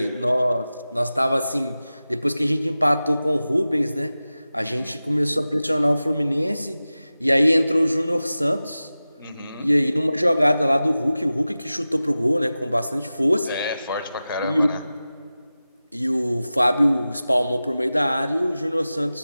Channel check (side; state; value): both; inverted; correlation -0.95